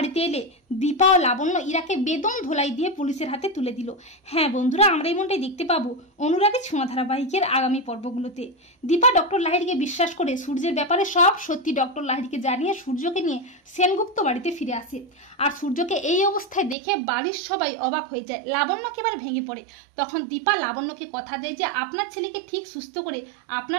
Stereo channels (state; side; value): drops out; left; at 16.8 s